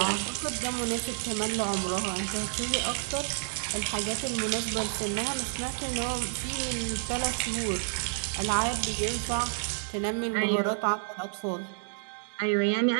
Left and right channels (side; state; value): left; silent; digital silence